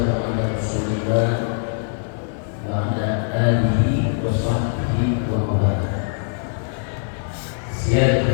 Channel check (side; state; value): right; silent; 55 dB below the other